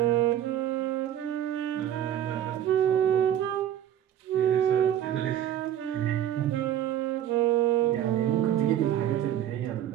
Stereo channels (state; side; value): quieter; left; 10.9 dB